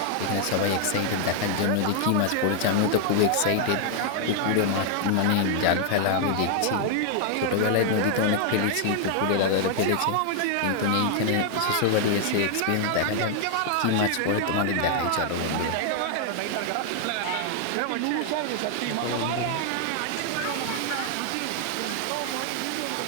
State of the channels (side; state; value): both; different; correlation 0.00